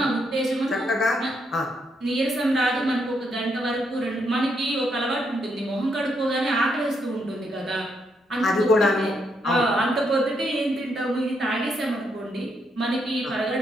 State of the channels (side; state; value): both; normal; correlation 0.77